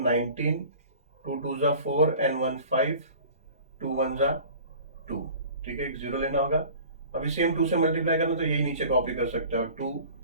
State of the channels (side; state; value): both; inverted; correlation -0.44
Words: 19, 2 2 जा 4 एंड 1 5, 2 1 जा 2। ठीक है, एक 0 लेना होगा, अभी सेम 2 से मल्टीप्लाई करना, तो यही नीचे कॉपी कर सकते हो, 2